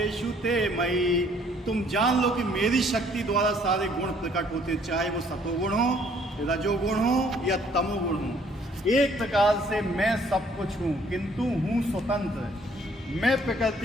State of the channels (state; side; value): normal; both; correlation 0.62